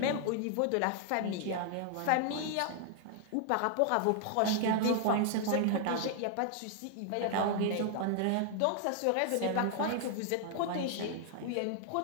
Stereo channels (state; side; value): different; both; correlation 0.00